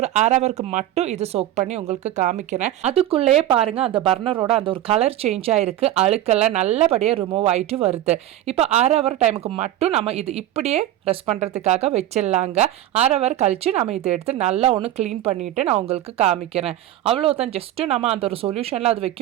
1/2 ஹவருக்கு மட்டும் இது சோக் பண்ணி உங்களுக்கு காமிக்கிறேன். அதுக்குள்ளேயே பாருங்கள் அந்த பர்னரோட அந்த ஒரு கலர் சேஞ்ச் ஆகிருக்கு. அழுக்கெல்லாம் நல்லபடியாக ரிமூவ் ஆகிட்டு வருது. இப்போ 1/2 ஹவர் டைமுக்கு மட்டும் நம்ம இது இப்படியே ரெஸ்ட் பண்ணுறதுக்காக வச்சிடலாங்க. 1/2 ஹவர் கழித்து நம்ம இதை எடுத்து நல்லா ஒன்று க்ளீன் பண்ணிவிட்டு நான் உங்களுக்கு காமிக்கிறேன். அவ்வளோதான். ஜஸ்ட்டு நம்ம அந்த ஒரு சொல்யூஷனில் அது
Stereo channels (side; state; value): left; quieter; 13.0 dB